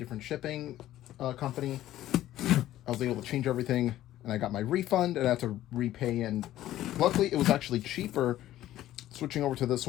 shipping company. I was able to change everything, and I got my refund, and I had to repay. And luckily, it was actually cheaper switching over to this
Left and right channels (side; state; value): right; quieter; 13.8 dB